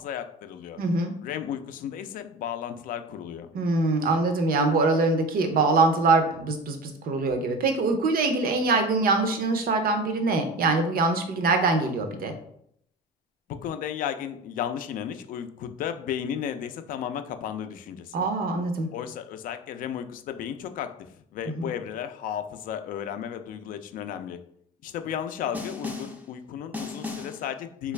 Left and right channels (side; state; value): both; normal; correlation 0.30